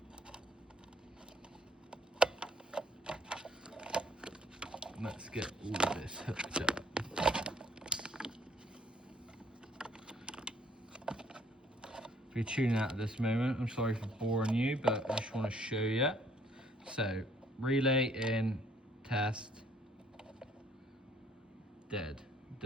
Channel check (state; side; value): normal; both; correlation 0.62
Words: let's get all of this hooked up. If you're tuning out at this moment, I'm sorry for boring you, but I just want to show you. So, relay in, test, dead.